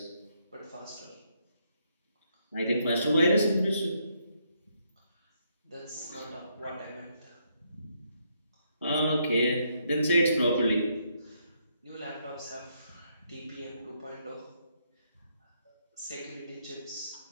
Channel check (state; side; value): inverted; both; correlation -0.75